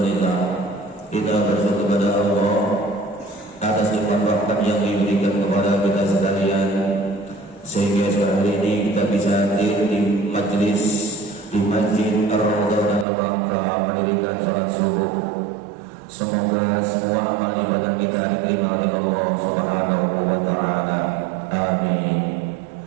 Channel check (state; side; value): drops out; left; at 13.1 s